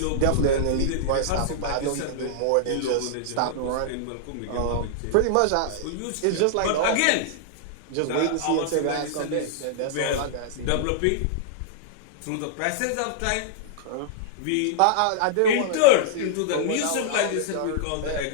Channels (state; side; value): different; both; correlation -0.01